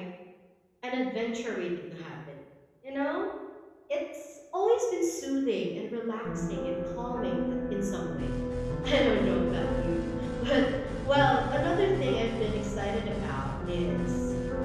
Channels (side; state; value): both; identical; correlation 1.00